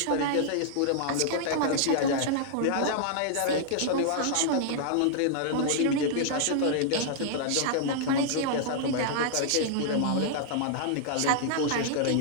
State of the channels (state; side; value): different; both; correlation -0.01